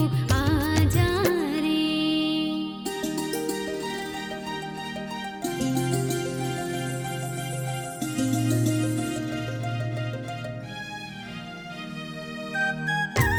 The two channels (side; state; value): both; identical; correlation 1.00